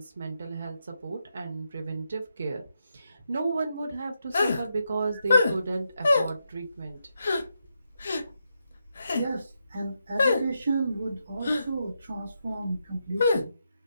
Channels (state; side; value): inverted; both; correlation -0.83